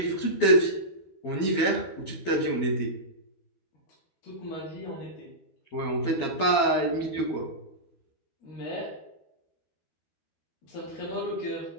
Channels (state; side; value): late; right; 12 ms